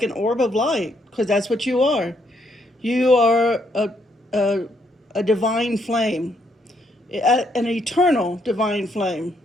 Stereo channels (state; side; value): normal; both; correlation 0.73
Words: an orb of light, because that's what you are. You are a divine flame, an eternal divine flame,